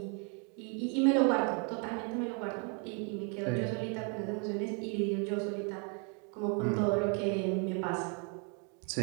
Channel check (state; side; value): quieter; left; 37.7 dB